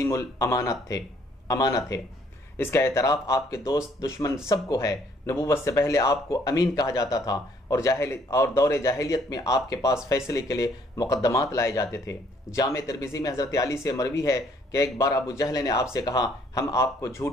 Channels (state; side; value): normal; both; correlation 0.64